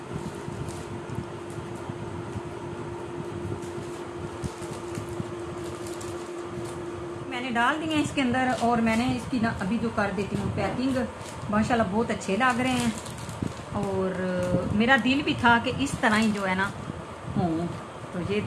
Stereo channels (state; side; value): identical; both; correlation 1.00